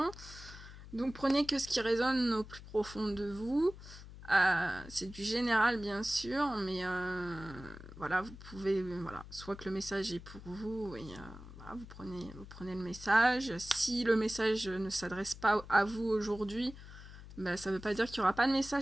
Donc prenez que ce qui résonne au plus profond de vous. C'est du général bien sûr, mais voilà, vous pouvez, voilà, soit que le message est pour vous, et voilà, vous prenez le message. Si le message ne s'adresse pas à vous aujourd'hui, ben, ça ne veut pas dire qu'il n'y aura pas de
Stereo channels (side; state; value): left; noise; hum, 15 dB below the sound